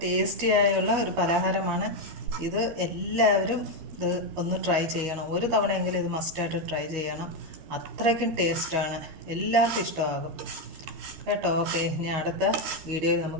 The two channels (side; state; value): left; late; 13 ms